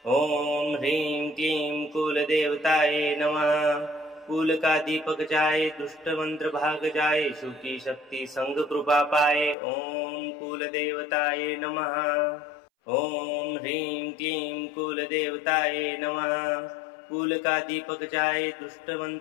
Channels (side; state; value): right; drops out; at 9.6 s